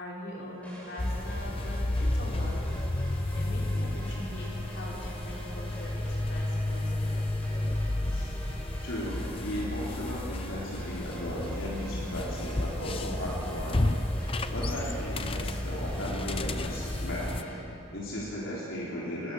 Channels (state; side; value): normal; both; correlation 0.79